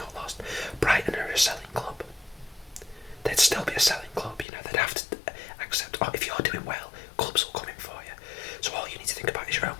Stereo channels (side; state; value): right; drops out; at 4.5 s